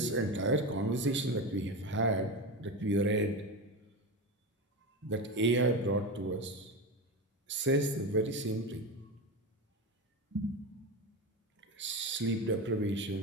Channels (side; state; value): both; normal; correlation 0.20